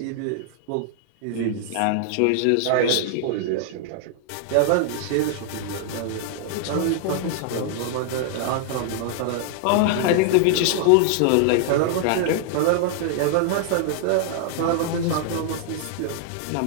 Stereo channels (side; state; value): both; different; correlation 0.00